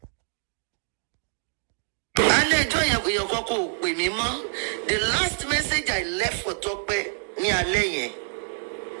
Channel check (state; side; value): silent; left; digital silence